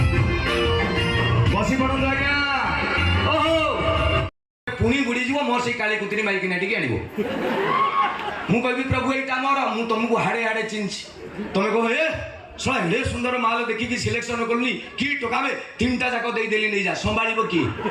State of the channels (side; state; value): both; identical; correlation 1.00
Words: पुणी बुड़ीज मोर से काली कुतरी मारिकी टी आण मु कह प्रभु यहाँ मोर मु तुमको हाड़े हाड़े चिन्ह तुम कह हे शला हे सुंदर माल देखिकी सिलेक्शन कलुनी कि टका में 3टा जाक देदेली नहीं जा संभाल किए